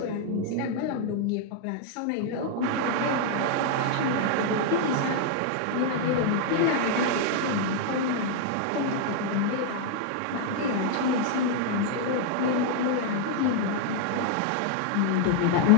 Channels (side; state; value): both; different; correlation 0.00